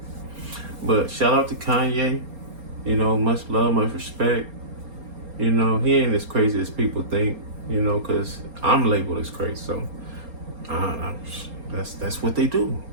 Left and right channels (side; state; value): left; late; 4.3 ms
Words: But shout out to Kanye. You know, much love, much respect. You know, he ain't as crazy as people think, you know, because I'm labeled as crazy. So that's what they do.